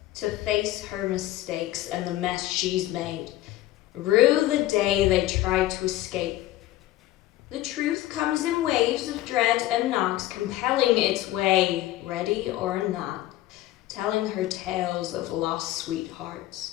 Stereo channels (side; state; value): right; quieter; 15.4 dB